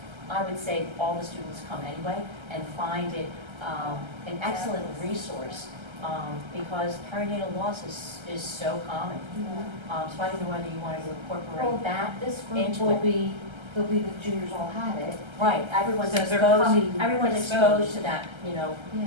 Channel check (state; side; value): late; left; 1.3 ms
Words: I would say all the students come anyway and find it an excellent resource. Because perinatal loss is so common. So I don't know whether you wanted to incorporate that This group into will it. be, they'll be the juniors all had it. Right, everyone's So they're exposed, coming everyone's exposed. exposed to that, Yeah.